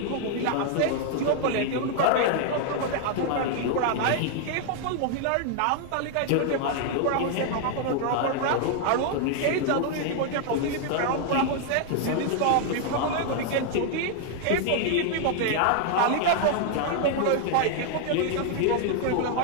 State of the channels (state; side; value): different; both; correlation 0.00